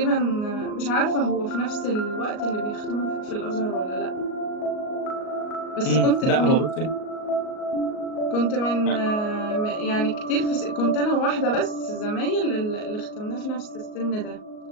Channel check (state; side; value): late; right; 38 ms